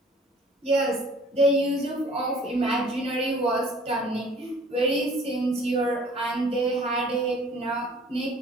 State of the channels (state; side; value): normal; both; correlation 0.52